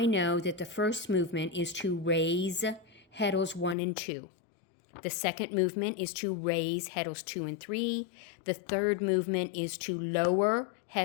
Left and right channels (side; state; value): right; drops out; at 3.8 s